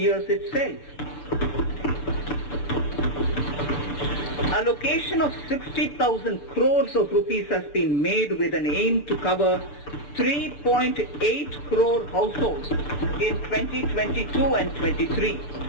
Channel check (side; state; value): right; late; 6.8 ms